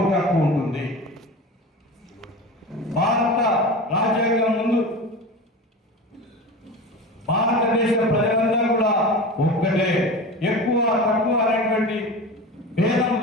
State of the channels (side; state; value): both; normal; correlation 0.30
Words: హక్కు ఉంటుంది. భారత రాజ్యాంగం ముందు భారతదేశ ప్రజలందరూ కూడా ఒక్కటే, ఎక్కువ తక్కువ అనేటువంటి భేదం